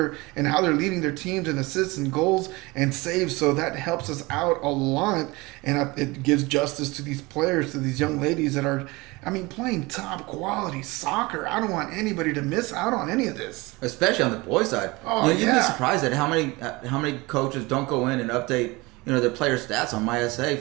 and how they're leading their teams in assists and goals and saves. So that helps us out a lot, and it gives justice to these players, to these young ladies that are, playing top quality soccer. I don't want anybody to miss out on any of this, especially on the boys' side. Oh, you'd be surprised at how many coaches don't go in and update their player stats on MySA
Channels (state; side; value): quieter; left; 23.3 dB